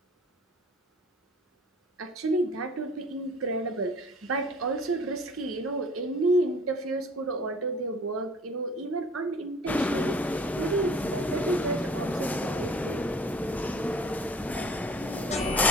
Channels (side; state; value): both; normal; correlation 0.48